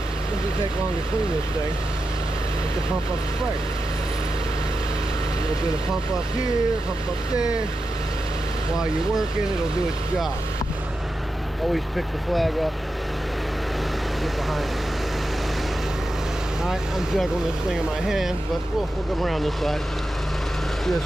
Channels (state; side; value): normal; both; correlation 0.90